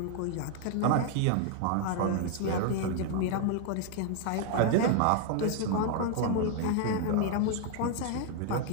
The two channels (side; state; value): both; different; correlation 0.00